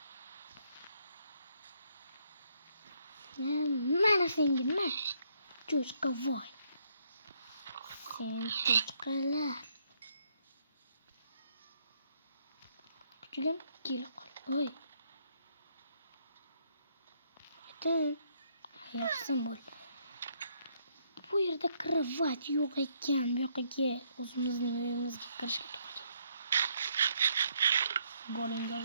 Mana senga nima? Cho'chqa voy. Sen cho'chqalar. Kuchugim kelib qol. Voy. Yaxshi bo'ldi. Bu yerda kravat yo'q ekan. Bu yoqqa o'zimizning uyimizga kirishga to'g'ri. Golinga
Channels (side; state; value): both; inverted; correlation -0.72